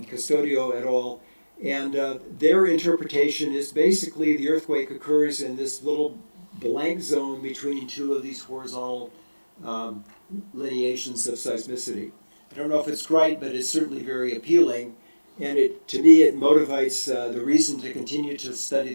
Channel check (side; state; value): both; inverted; correlation -1.00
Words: et al. And their interpretation is basically the earthquake occurs in this little blank zone between two of these horizontal lineations of seismicity. I don't know if it's right, but it's certainly very appealing. And to me, it motivates the reason to continue to study